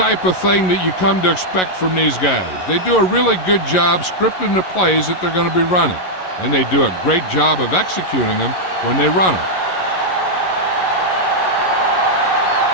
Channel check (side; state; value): right; late; 11 ms